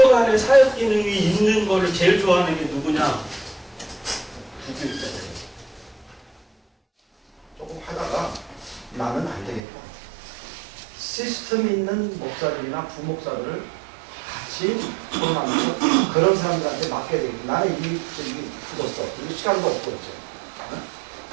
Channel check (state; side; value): drops out; left; at 9.6 s